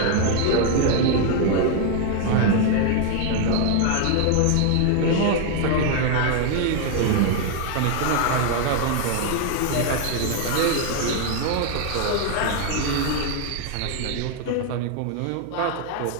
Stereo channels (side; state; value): both; different; correlation 0.00